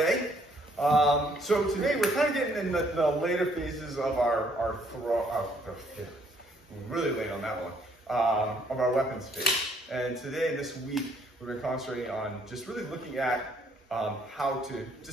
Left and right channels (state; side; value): normal; both; correlation 0.65